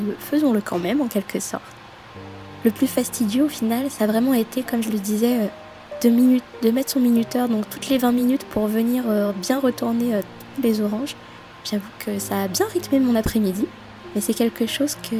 faisons-le quand même en quelque sorte. Le plus fastidieux au final, ça a vraiment été, comme je le disais, de mettre son minuteur donc toutes les 20 minutes pour venir bien retourner les oranges. J'avoue que ça a bien rythmé mon après-midi, mais c'est quelque chose que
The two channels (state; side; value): identical; both; correlation 1.00